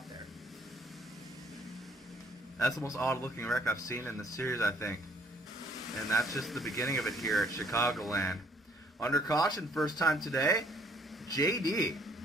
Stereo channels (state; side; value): normal; both; correlation 0.63